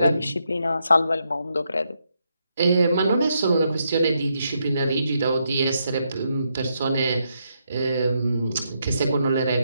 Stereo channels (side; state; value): both; inverted; correlation -0.79